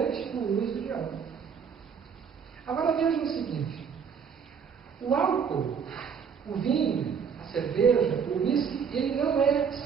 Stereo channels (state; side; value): quieter; left; 6.7 dB